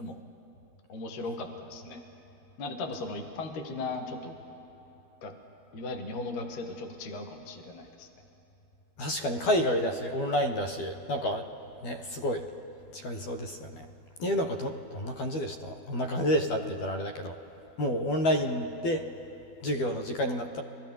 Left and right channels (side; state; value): right; late; 12 ms